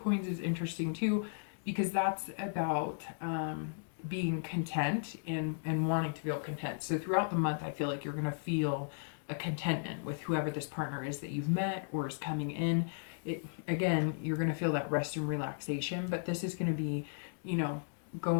is interesting too, because that's about being content and wanting to feel content. So throughout the month, I feel like you're going to feel a contentment with whoever this partner is that you've met or is coming in. Again, you're going to feel that rest and relaxation, but this is going to be,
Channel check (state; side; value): silent; right; digital silence